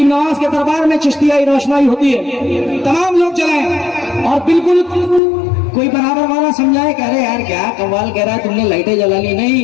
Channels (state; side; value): drops out; right; at 5.2 s